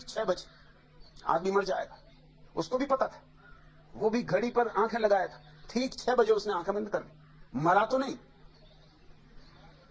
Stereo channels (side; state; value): both; identical; correlation 1.00